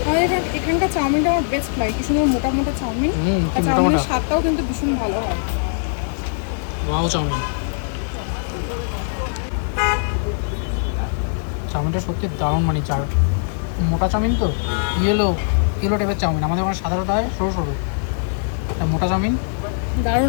এখানকার চাউমিনটা আমার বেস্ট লাগে, কি সুন্দর মোটা মোটা চাউমিন। কি মোটা মোটা, স্বাদটাও কিন্তু ভীষণ ভালো হয়। ওয়াও চাউমিন, চাউমিনটা সত্যি দারুণ, মানে মোটা চাউমিন তো ইয়েলো টাইপের চাউমিন। আমাদের ওখানে সাধারণত হয় সরু সরু, মোটা চাউমিন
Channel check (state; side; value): silent; right; 64 dB below the other